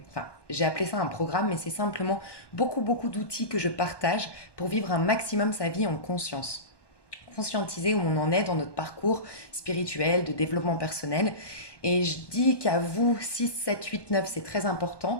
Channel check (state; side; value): late; right; 1.2 ms